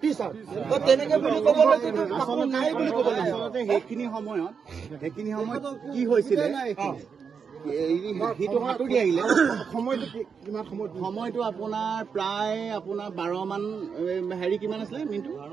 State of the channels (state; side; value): quieter; left; 6.2 dB